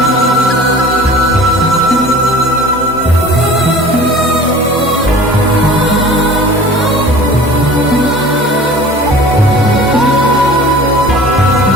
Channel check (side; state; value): both; normal; correlation 0.43